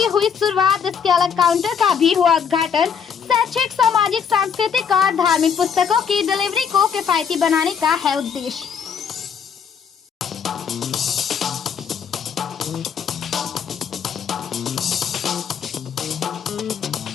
हुई शुरुआत। इसके अलग काउंटर का भी हुआ उद्घाटन। शैक्षिक, सामाजिक, सांस्कृतिक और धार्मिक पुस्तकों की डिलीवरी को किफायती बनाने का है उद्देश्य।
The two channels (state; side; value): quieter; right; 7.1 dB